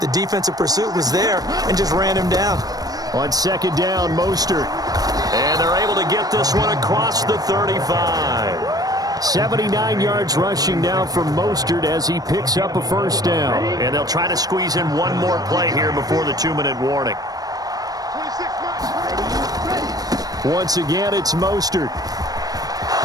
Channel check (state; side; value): late; left; 0.18 ms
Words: defensive pursuit was there and just ran him down. On 2nd down, Mostert. And they're able to get this one across the 35. 79 yards rushing now from Mostert as he picks up a 1st down. And they'll try to squeeze in one more play here before the 2-minute warning. Once again, it's Mostert.